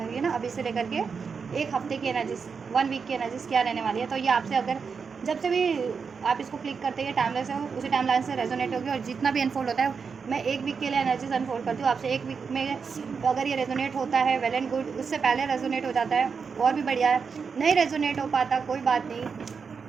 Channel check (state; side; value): quieter; left; 5.7 dB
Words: ये ना अभी से लेकर के 1 हफ्ते की एनर्जीज, 1 वीक की एनर्जीज क्या रहने वाली है। तो ये आपसे अगर जब से भी आप इसको क्लिक करते हैं टाइमलाइन से, उसी टाइमलाइन से रेजोनेट होगी। और जितना भी अनफोल्ड होता है, मैं 1 वीक के लिए एनर्जीज अनफोल्ड करती हूँ आपसे। 1 वीक में तो अगर ये रेजोनेट होता है वेल एंड गुड, उससे पहले रेजोनेट हो जाता है और भी बढ़िया है। नहीं रेजोनेट हो पाता कोई बात नहीं,